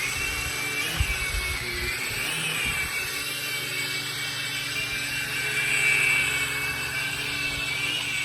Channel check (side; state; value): both; identical; correlation 1.00